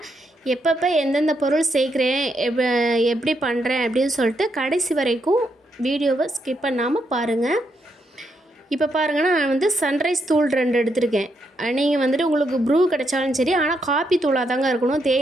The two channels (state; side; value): normal; both; correlation 0.79